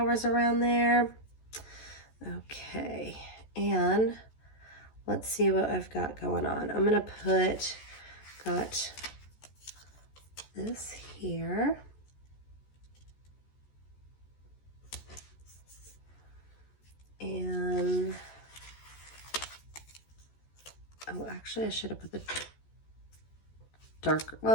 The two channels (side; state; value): right; late; 14 ms